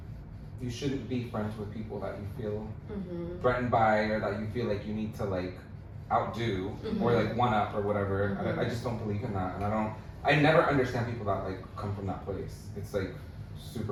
shouldn't be friends with people that you feel Mhm. threatened by or that you feel like you need to like outdo or like one up or whatever. I just don't believe in that, and I never understand people that like come from that place. It's like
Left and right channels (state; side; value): identical; both; correlation 1.00